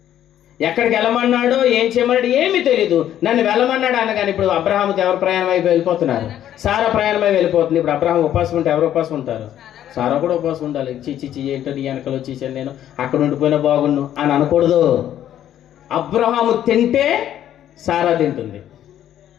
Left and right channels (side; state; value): right; quieter; 11.3 dB